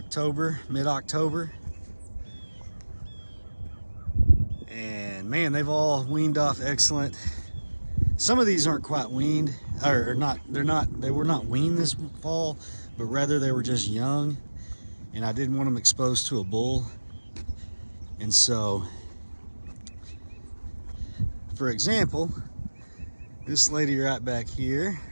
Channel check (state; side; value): inverted; both; correlation -1.00